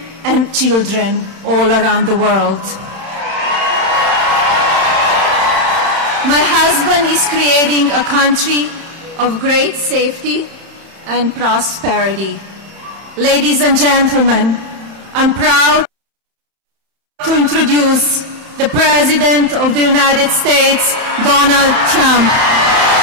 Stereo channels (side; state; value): left; late; 31 ms